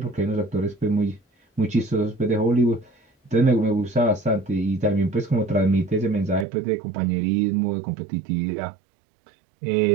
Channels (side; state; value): left; drops out; at 6.5 s